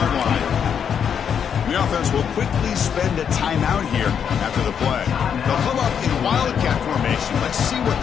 line. The offense will quickly spend a timeout here after the play. They'll come up in wildcat formation. Let's see what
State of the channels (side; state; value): right; quieter; 7.7 dB